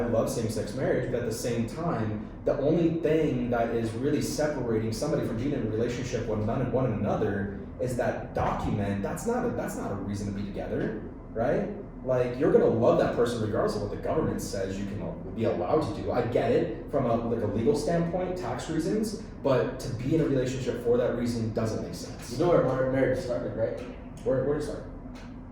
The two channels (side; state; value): both; identical; correlation 1.00